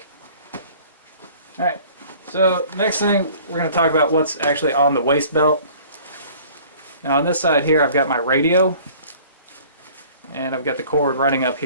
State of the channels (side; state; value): both; inverted; correlation -0.50